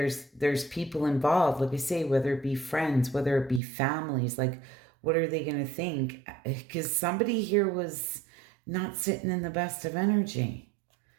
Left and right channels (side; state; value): left; drops out; at 3.6 s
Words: people involved, like I say, whether it be friends, whether it be families, like what are they going to think? Because somebody here was not sitting in the best of energy.